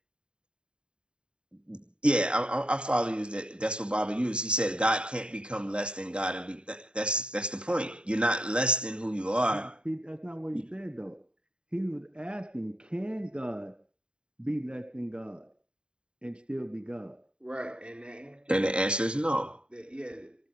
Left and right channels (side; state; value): left; late; 0.051 ms